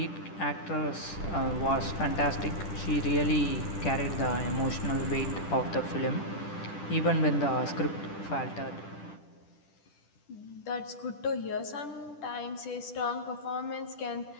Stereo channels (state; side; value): late; right; 10 ms